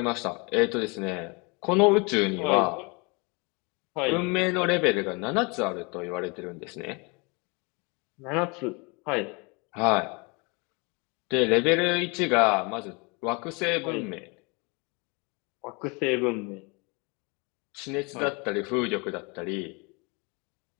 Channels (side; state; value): right; quieter; 29.9 dB